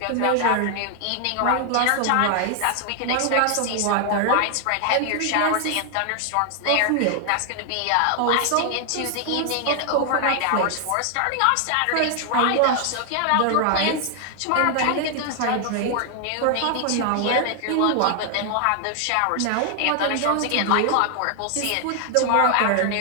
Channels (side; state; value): both; different; correlation 0.00